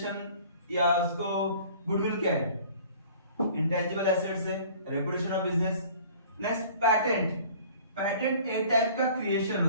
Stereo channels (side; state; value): both; inverted; correlation -0.49